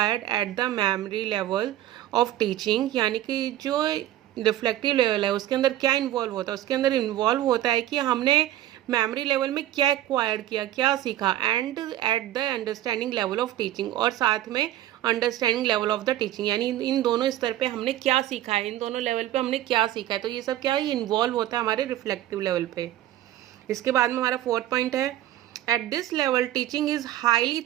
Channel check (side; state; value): left; quieter; 13.4 dB